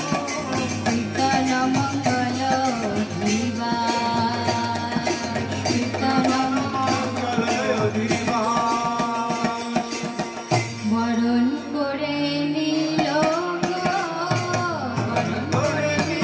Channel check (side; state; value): both; identical; correlation 1.00